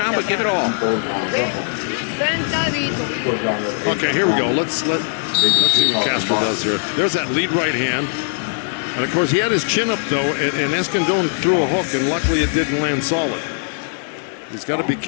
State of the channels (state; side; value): silent; right; digital silence